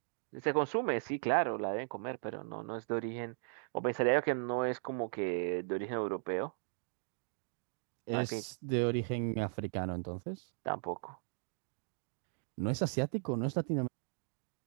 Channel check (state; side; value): silent; left; digital silence